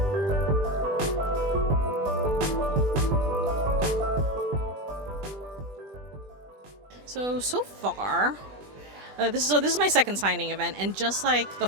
So far, this is my second signing event, and just like the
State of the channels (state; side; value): late; left; 20 ms